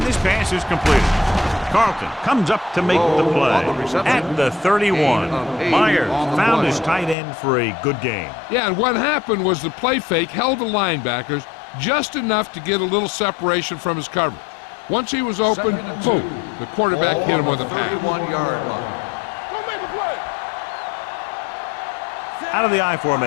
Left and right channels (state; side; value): drops out; right; at 7.2 s